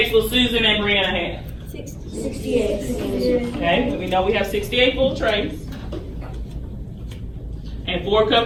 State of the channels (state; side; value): identical; both; correlation 1.00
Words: will Susan and Brianna have? 68. Okay, we know we have 68 full trays. And 4